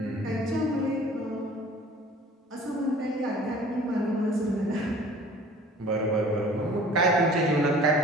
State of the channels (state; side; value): normal; both; correlation 0.48